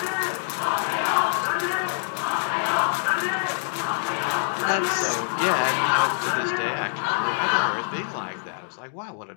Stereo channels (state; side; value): silent; right; digital silence